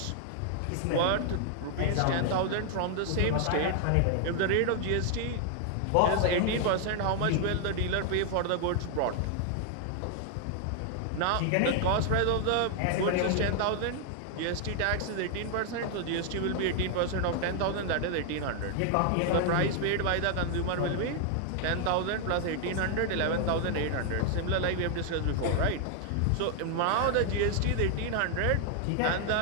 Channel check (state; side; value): different; both; correlation 0.00